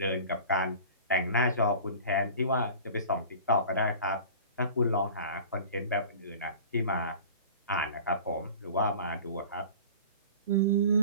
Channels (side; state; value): both; inverted; correlation -0.40